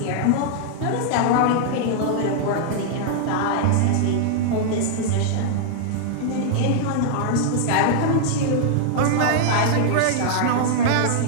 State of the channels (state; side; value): different; both; correlation -0.01